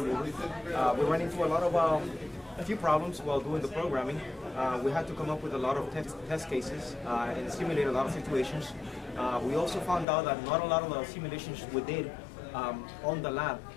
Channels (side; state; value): right; drops out; at 10.1 s